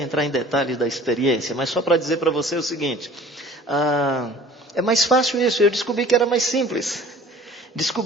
em detalhes da experiência, mas só para dizer para você o seguinte... É mais fácil isso, eu descobri que era mais simples.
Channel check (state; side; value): normal; both; correlation 0.47